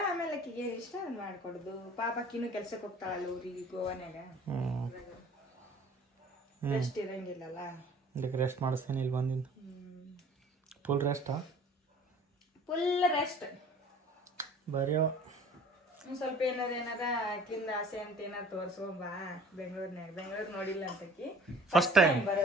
ಆಮೇಲೆ ಆಕಿಗೆ ಏನು ಇಷ್ಟ ಅದು ಮಾಡ್ಕೊಡುದು. ಪಾಪ ಆಕಿನೂ ಕೆಲ್ಸಕ್ಕೆ ಹೋಗ್ತಾಳಲ್ಲ ಊರಿಗೆ, ಗೋವಾನ್ಯಾಗ. ರೆಸ್ಟ್ ಇರಂಗಿಲ್ಲಲ್ಲ, ಇದಕ್ಕೆ ರೆಸ್ಟ್ ಮಾಡಿಸ್ತೇನೆ ಇಲ್ಲಿ ಬಂದಿಂದ. ಫುಲ್ ರೆಸ್ಟಾ? Full rest. ಬರೆಯೋ ಒಂದ್ ಸ್ವಲ್ಪ ಏನಾರ ಆಕಿಂದ ಆಸೆ ಅಂತ ಏನಾರ ತೋರ್ಸ್ಕೊಂಬಾ ಬೆಂಗಳೂರು ನೋಡಿಲ್ಲ ಅಂತಕಿ ಫಸ್ಟ್ ಟೈಮ್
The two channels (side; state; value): both; normal; correlation 0.49